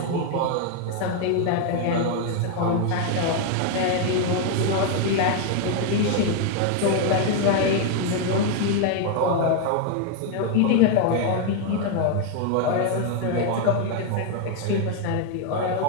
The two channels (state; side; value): different; both; correlation 0.01